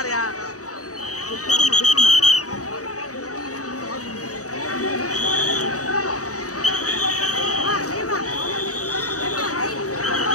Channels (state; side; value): late; right; 0.66 ms